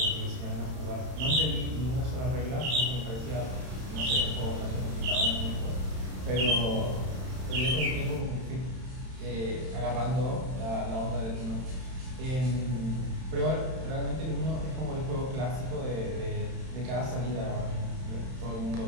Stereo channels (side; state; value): left; late; 31 ms